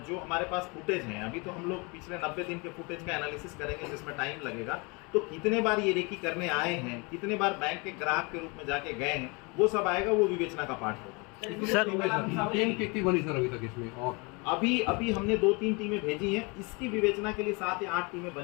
जो हमारे पास फुटेज हैं, अभी तो हम लोग पिछले 90 दिन के फुटेज का एनालिसिस करेंगे, जिसमें टाइम लगेगा। तो कितने बार ये रेकी करने आए हैं, कितने बार बैंक के ग्राहक के रूप में जाके गए हैं, वो सब आएगा। वो विवेचना का पार्ट होगा। सर टीम कितनी बनी सर अभी तक इसमें? और अभी हमने 2-3 टीमें भेजी हैं। इसकी विवेचना के लिए 7 या 8 टीमें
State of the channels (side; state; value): right; quieter; 29.2 dB